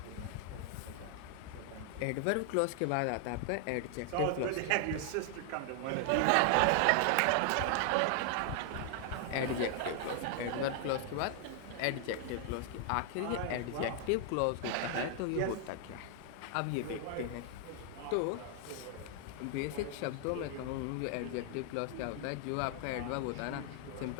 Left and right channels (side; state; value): both; different; correlation 0.00